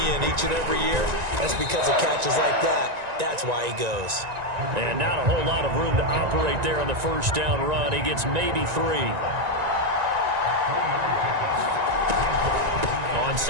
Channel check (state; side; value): late; left; 1.9 ms